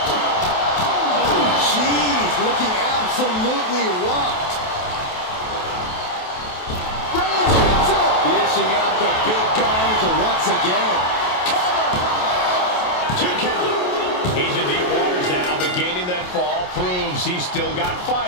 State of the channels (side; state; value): right; late; 28 ms